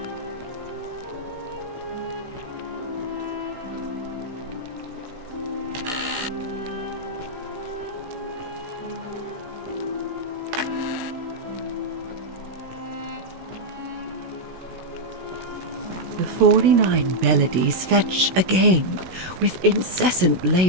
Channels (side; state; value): left; late; 16 ms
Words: The 49 melodies fetch again with incessant